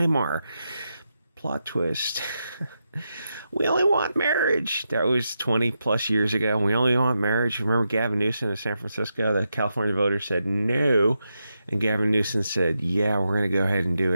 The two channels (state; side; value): inverted; both; correlation -0.86